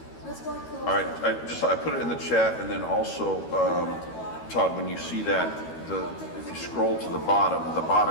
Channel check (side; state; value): right; late; 13 ms